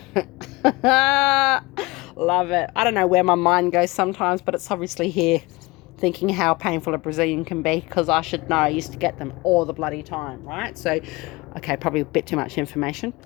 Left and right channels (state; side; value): quieter; right; 23.1 dB